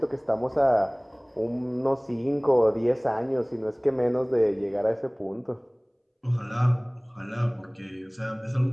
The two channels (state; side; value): identical; both; correlation 1.00